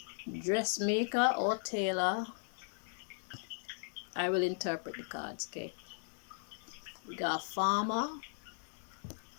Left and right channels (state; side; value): silent; right; digital silence